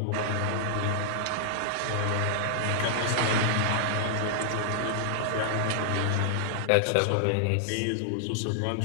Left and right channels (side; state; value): both; different; correlation -0.01